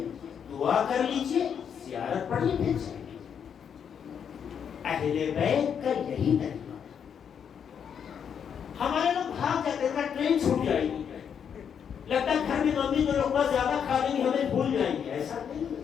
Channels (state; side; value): quieter; right; 7.7 dB